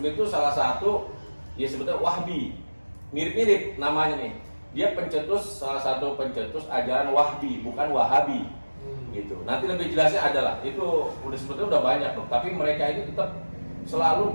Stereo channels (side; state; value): both; inverted; correlation -1.00